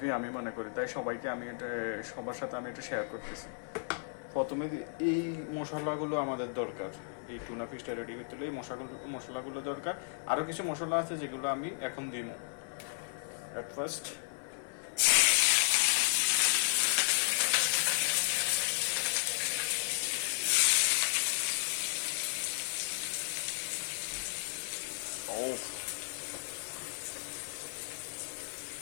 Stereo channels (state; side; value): silent; right; digital silence